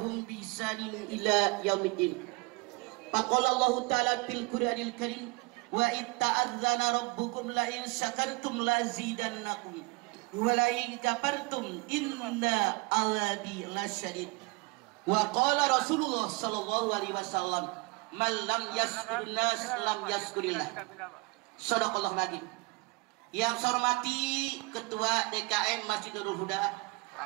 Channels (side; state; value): left; quieter; 26.1 dB